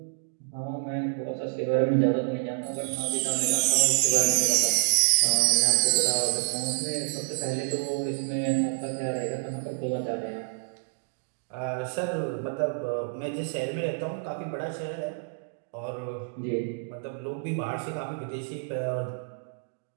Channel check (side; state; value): left; silent; digital silence